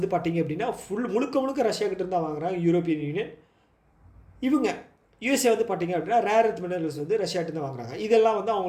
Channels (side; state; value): both; identical; correlation 1.00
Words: பார்த்தீங்க அப்படின்னா முழுக்க ரஷ்யா கிட்டேருந்து தான் வாங்குறாங்க யூரோப்பியன் யூனியன். இவங்க யூஎஸ்ஏ வந்து பார்த்தீங்க அப்படின்னா ரேர் எர்த் மினரல்ஸ் வந்து ரஷ்யாகிட்ட தான் வாங்குறாங்க. இதெல்லாம் வந்து